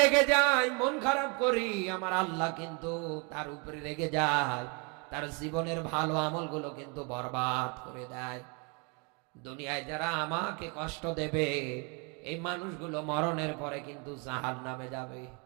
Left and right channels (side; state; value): left; quieter; 33.4 dB